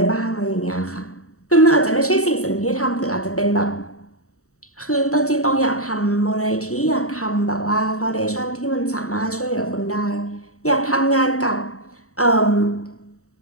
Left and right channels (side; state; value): right; late; 0.64 ms